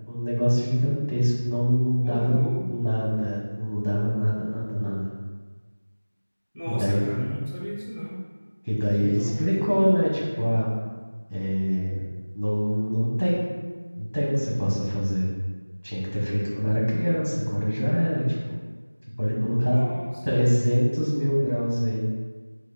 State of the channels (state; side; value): inverted; both; correlation -1.00